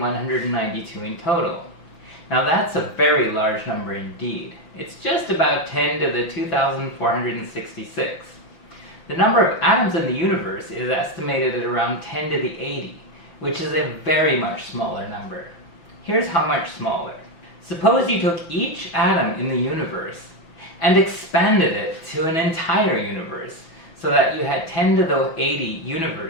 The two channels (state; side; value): late; right; 6.1 ms